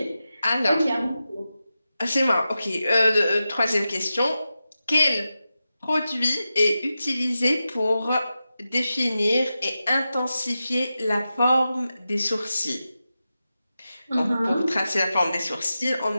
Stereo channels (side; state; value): both; inverted; correlation -0.92